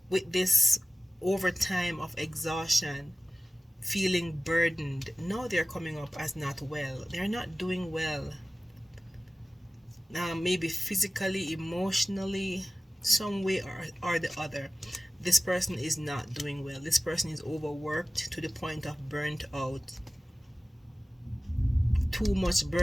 with this overtime of exhaustion, feeling burdened, now they're coming up as not well. They're not doing well. Maybe physically, emotionally, some way or the other. This person is not doing well. This person is overworked to the point of burnt out. Too much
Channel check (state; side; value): normal; both; correlation 0.96